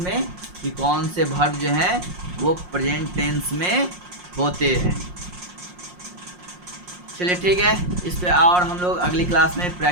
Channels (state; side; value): late; left; 5.6 ms